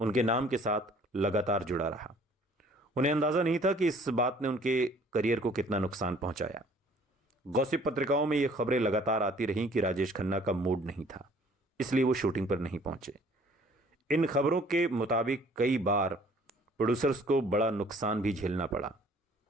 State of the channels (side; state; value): both; normal; correlation 0.55